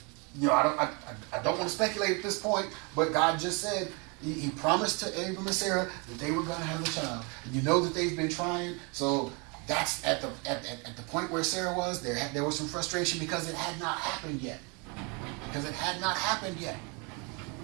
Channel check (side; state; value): left; quieter; 31.8 dB